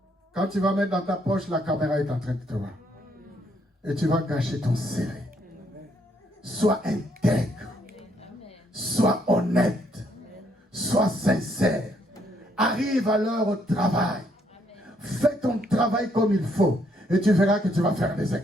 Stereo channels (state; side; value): normal; both; correlation 0.71